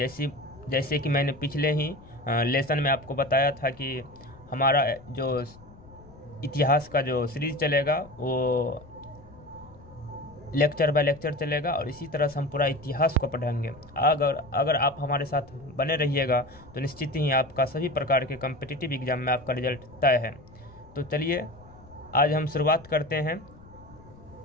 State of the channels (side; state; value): left; noise; rumble, 22 dB below the sound